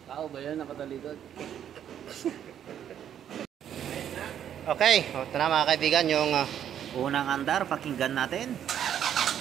Tao ba yan nakatalikod? Okay, ito na mga kaibigan yung unang andar, pakinggan natin.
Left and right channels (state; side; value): quieter; left; 9.7 dB